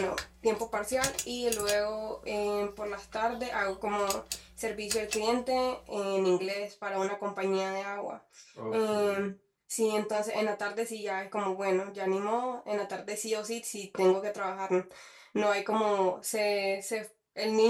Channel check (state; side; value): identical; both; correlation 1.00